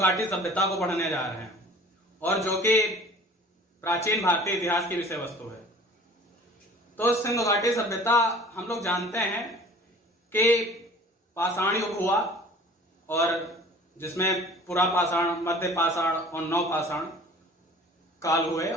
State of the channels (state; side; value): normal; both; correlation 0.46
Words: सभ्यता को पढ़ने जा रहे हैं और जो कि प्राचीन भारतीय इतिहास की विषय वस्तु है। तो सिंधु घाटी सभ्यता हम लोग जानते हैं कि पाषाण युग हुआ और जिसमें पुरा पाषाण, मध्य पाषाण और नव पाषाण काल हुए